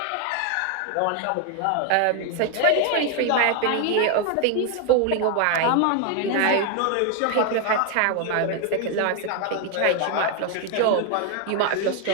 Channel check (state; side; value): different; both; correlation 0.01